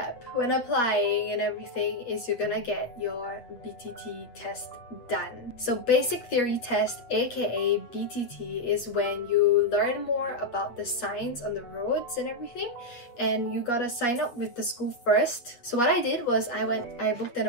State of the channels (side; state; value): right; late; 8.1 ms